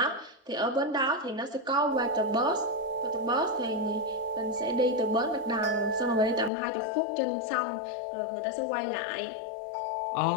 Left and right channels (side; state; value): right; drops out; at 6.5 s